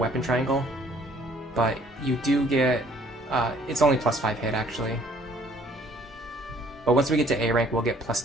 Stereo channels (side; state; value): both; normal; correlation 0.59